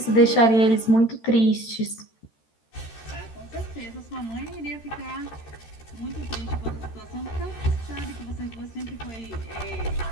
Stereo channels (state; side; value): late; right; 13 ms